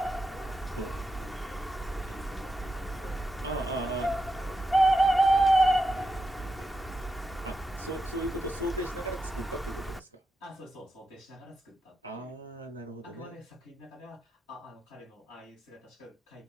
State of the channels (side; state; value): both; normal; correlation 0.87